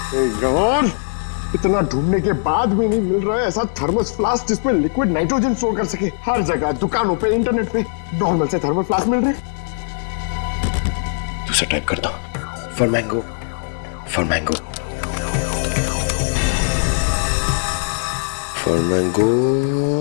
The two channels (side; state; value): right; silent; digital silence